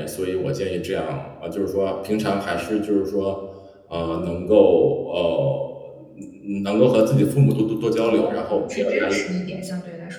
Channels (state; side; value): identical; both; correlation 1.00